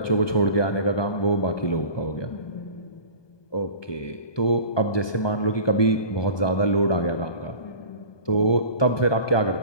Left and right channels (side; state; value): right; late; 1.2 ms